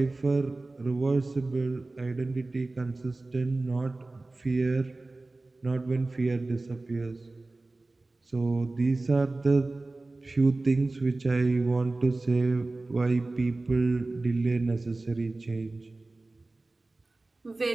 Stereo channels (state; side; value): quieter; left; 3.2 dB